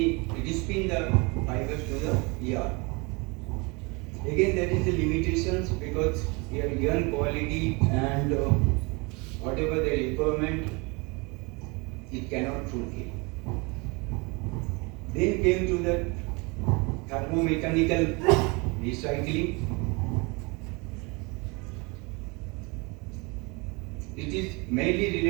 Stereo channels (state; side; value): quieter; left; 28.3 dB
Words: the fibers to the yarn. Again, there is a limitations because your yarn quality and whatever the requirement, it cannot fulfill. Then came to the thermomechanical recycling. It is mainly